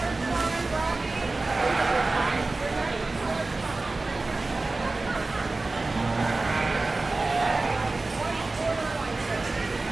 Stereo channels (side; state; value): left; quieter; 3.3 dB